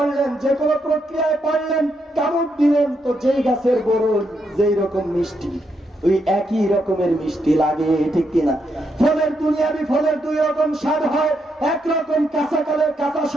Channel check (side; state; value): both; normal; correlation 0.80